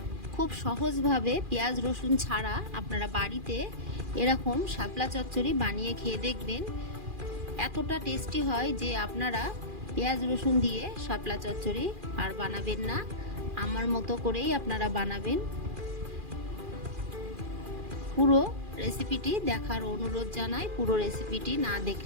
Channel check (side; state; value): left; late; 2.4 ms